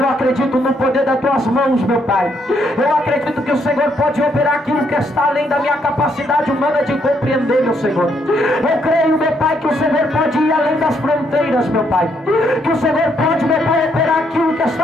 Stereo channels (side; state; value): both; normal; correlation 0.73